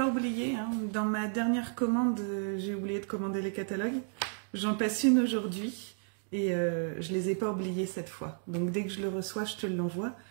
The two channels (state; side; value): silent; left; 56 dB below the other